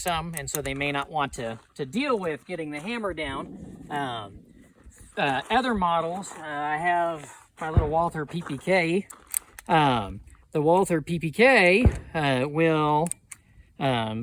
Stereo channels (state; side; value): identical; both; correlation 1.00